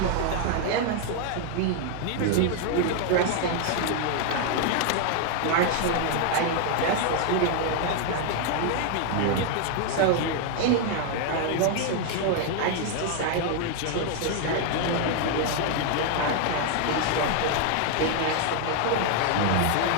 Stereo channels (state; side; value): different; both; correlation 0.00